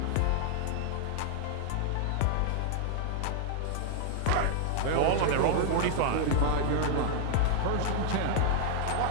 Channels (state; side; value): different; both; correlation 0.00